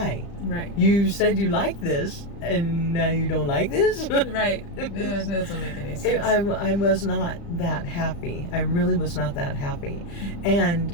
You said you liked this, and now you don't like this? Right. It doesn't make any sense. I was not that happy. I really was not that happy.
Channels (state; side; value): late; right; 35 ms